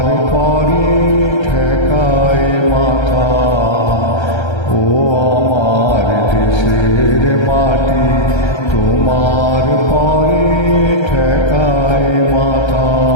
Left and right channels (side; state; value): right; late; 1.3 ms